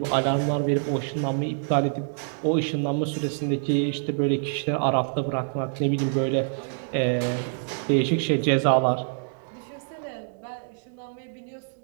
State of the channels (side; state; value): left; silent; digital silence